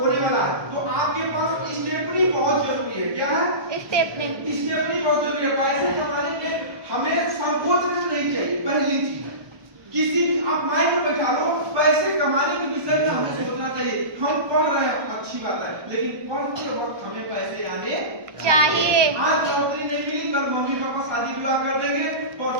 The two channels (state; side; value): late; left; 1.2 ms